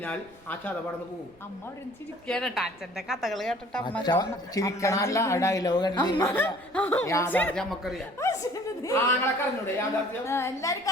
ആ ചതവടന്ന് പോകും. അമ്മ അവിടെ ചിരിക്കാനട്ടാ അച്ഛന്റെ കഥകൾ കേട്ടിട്ട്. ചിരിക്കണല്ല ഡയലോഗ് യാഥാർത്ഥ്യം നമുക്കറിയാം. ആങ്ങളൊക്കെ അറിഞ്ഞൂടെ യാഥാർത്ഥ്യം? എല്ലാവർക്കും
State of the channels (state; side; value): noise; right; rumble, 28 dB below the sound